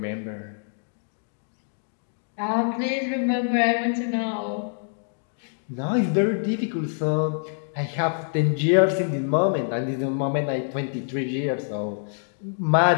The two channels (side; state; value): right; silent; digital silence